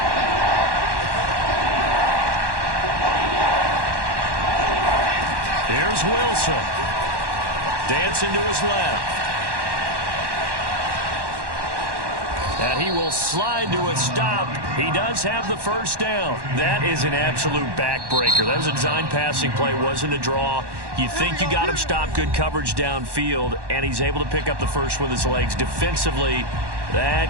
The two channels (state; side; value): late; left; 1.1 ms